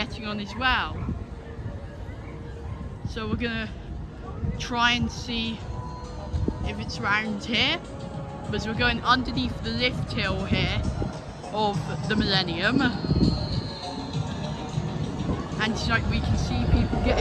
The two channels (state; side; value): identical; both; correlation 1.00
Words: on as well. So we're gonna try and see if it's around here, because we're going underneath the lift hill here of the Millennium, and it's like we can see people